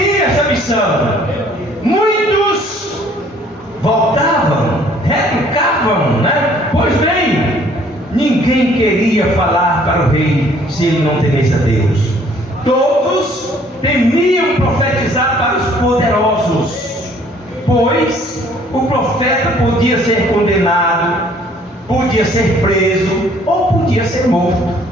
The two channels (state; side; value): normal; both; correlation 0.59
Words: essa missão. Muitos voltavam, retrucavam, né? Pois bem, ninguém queria falar para o rei se ele não temesse a Deus. Todos temiam profetizar para os poderosos, pois o profeta podia ser condenado, podia ser preso ou podia ser morto,